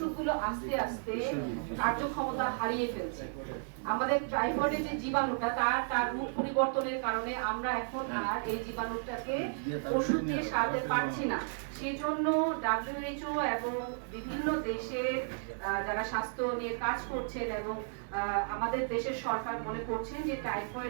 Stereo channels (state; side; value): silent; left; 55 dB below the other